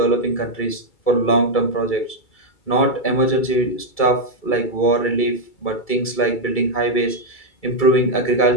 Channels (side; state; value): right; late; 2.3 ms